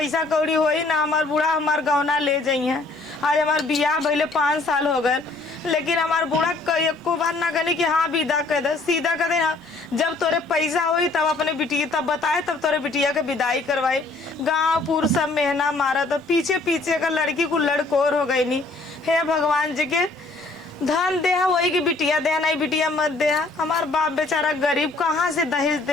कौड़ी होई ना हमार बूढ़ा हमार गौना ले जाइए। आज हमार बियाह भइले 5 साल हो गए लेकिन हमार बूढ़ा एको बार ना कहनी कि हाँ विदा कर दे सीधा कर दे। हाँ जब तोरे पैसा होई तब अपने बिटिया तब बताए तब तोरे बिटिया के विदाई करवाई। गाँव पूर सब मेहना मारा तो पीछे पीछे का लड़की को लड़कोर हो गई नहीं। हे भगवान जी के धन दे वही की बिटिया दे नहीं बिटिया मत दे। हमार बाप बेचारा गरीब कहाँ से दहेज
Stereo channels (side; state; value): right; quieter; 3.3 dB